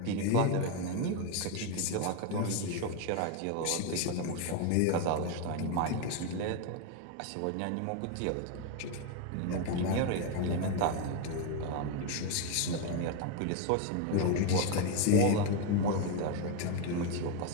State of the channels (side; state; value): both; different; correlation 0.02